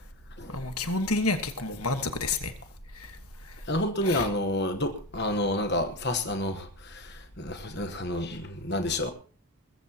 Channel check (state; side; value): normal; both; correlation 0.19